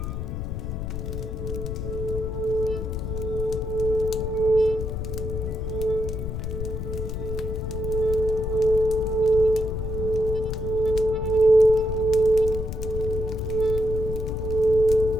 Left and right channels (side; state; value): left; noise; rumble, 4 dB below the sound